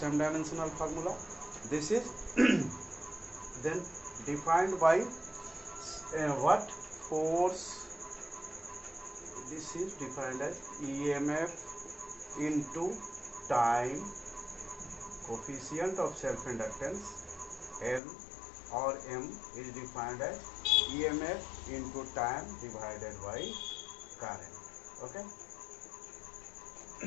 dimensional formula. This is then defined by what? Force. This is defined as EMF into time. Coefficient of self-inductance L or M is defined as EMF into time divided by current. Okay,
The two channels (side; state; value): right; drops out; at 18.0 s